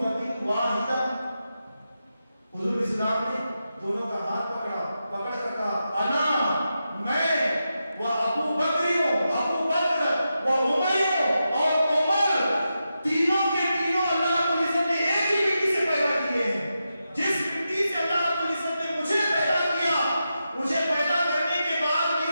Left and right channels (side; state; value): both; inverted; correlation -0.88